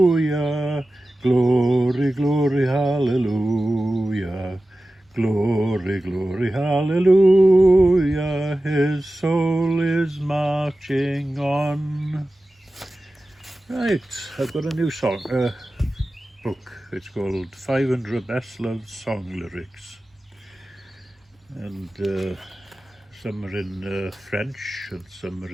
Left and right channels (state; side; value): normal; both; correlation 0.95